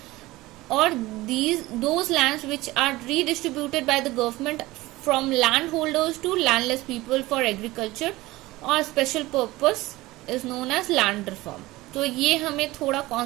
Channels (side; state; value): left; quieter; 19.1 dB